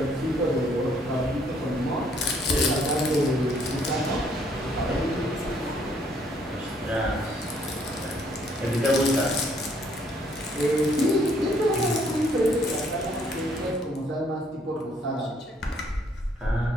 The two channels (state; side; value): normal; both; correlation 0.66